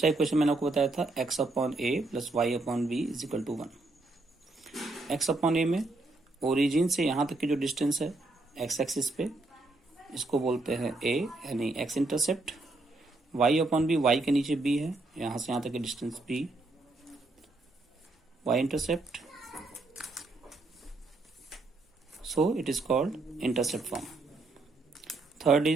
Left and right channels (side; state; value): left; quieter; 3.0 dB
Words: इक्वेशन मैंने आपको बताया था x upon a plus y upon b is equal to 1। X upon a में ओरिजिन से यहाँ तक की जो डिस्टेंस है एक्स एक्सिस पे, इसको बोलते हैं a यानी x intercept. y upon b, y के नीचे b है, यहाँ से यहाँ तक की distance b, y intercept. So it is called intercept form. Third